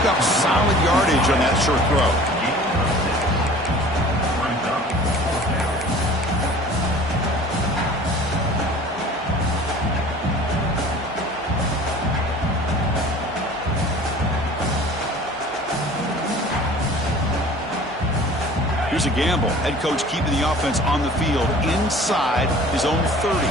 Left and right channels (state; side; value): normal; both; correlation 0.45